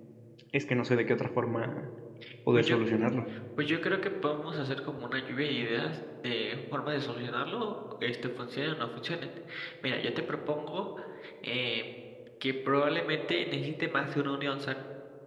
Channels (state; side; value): identical; both; correlation 1.00